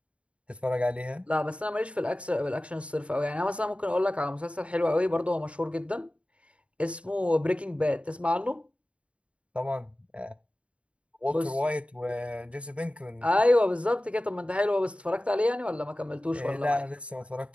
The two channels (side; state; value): left; late; 0.061 ms